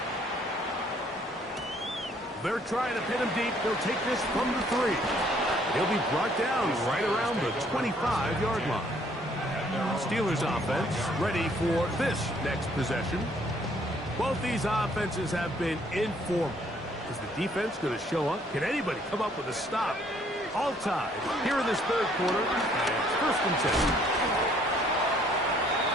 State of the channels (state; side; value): normal; both; correlation 0.63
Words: They're trying to pin him deep. They'll take this from the 3. He'll be brought down right around the 25-yard line. Steelers offense ready for this next possession. Both these offenses have been informal. Is the defense going to show up? Can anybody come up with a stop? All tied here in this third quarter. And it's 1st and 10.